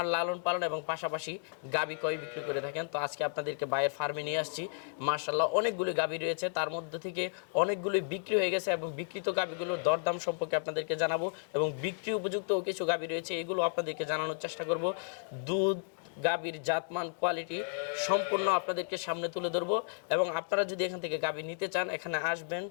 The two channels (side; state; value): right; silent; digital silence